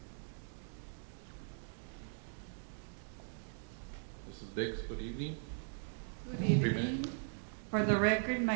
Mrs. Biggs, good evening. Good 3 evening. minutes. For the record,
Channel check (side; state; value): left; silent; digital silence